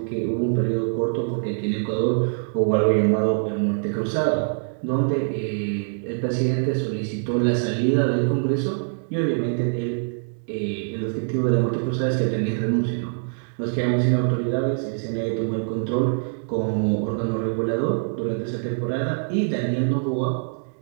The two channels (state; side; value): silent; left; digital silence